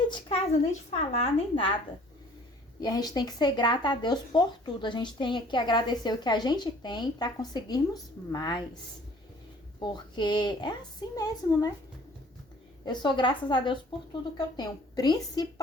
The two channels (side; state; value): both; normal; correlation 0.53